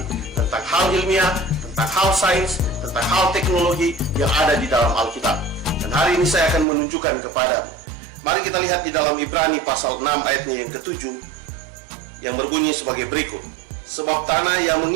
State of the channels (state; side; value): drops out; left; at 6.7 s